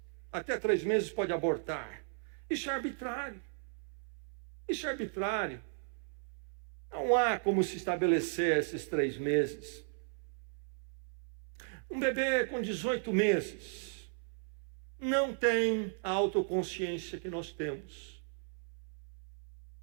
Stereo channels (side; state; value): left; silent; 54 dB below the other